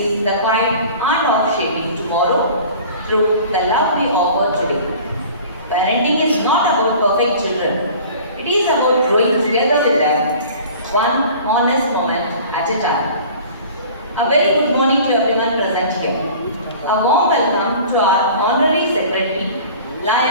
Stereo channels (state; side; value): inverted; both; correlation -0.44